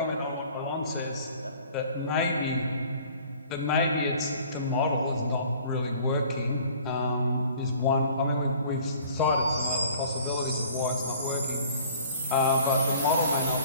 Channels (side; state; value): both; inverted; correlation -0.50